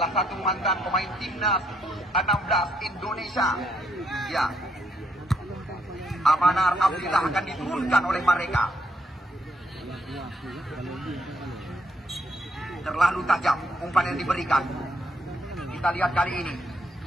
satu mantan pemain timnas 16 Indonesia. Ya, Amanar Abdillah akan diturunkan oleh mereka. Terlalu tajam umpan yang diberikan. Kita lihat kali ini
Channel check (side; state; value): both; normal; correlation 0.73